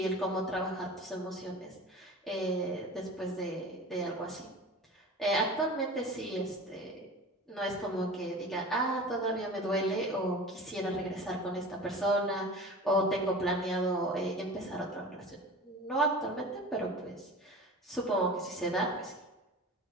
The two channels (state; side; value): normal; both; correlation 0.36